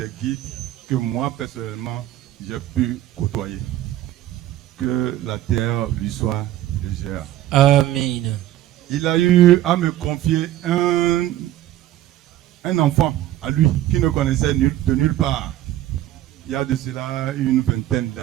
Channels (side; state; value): left; quieter; 13.7 dB